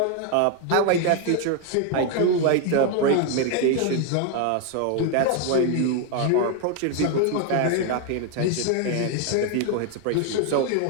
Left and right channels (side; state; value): both; different; correlation 0.01